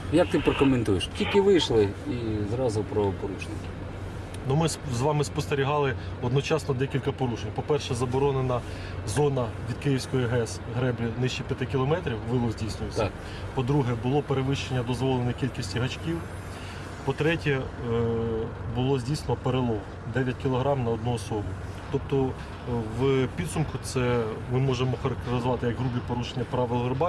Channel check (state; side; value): identical; both; correlation 1.00